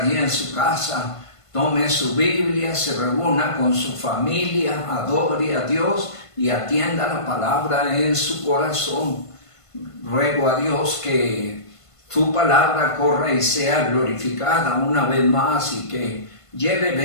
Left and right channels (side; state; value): right; late; 1.5 ms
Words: en su casa tome su Biblia, se reúna con su familia, adore a Dios y atienda la palabra en su corazón. Ruego a Dios que su palabra corra y sea glorificada una vez más y que lleve